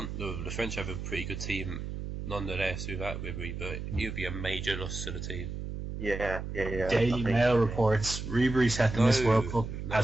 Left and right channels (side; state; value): right; noise; hum, 6 dB below the sound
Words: French have a pretty good team nonetheless without Ribery, but he would be a major loss to the team. Yeah. Daily Mail reports Ribery set to miss World Cup